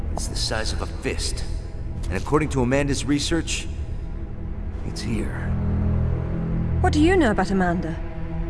It's the size of a fist. And according to Amanda's research, it's here. What do you know about Amanda?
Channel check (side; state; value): both; identical; correlation 1.00